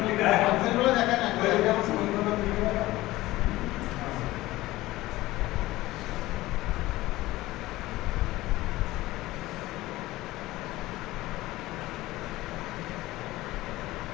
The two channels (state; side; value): quieter; right; 17.7 dB